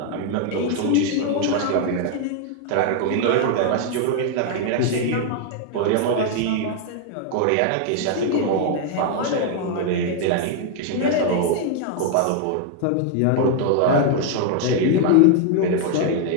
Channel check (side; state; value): both; different; correlation 0.00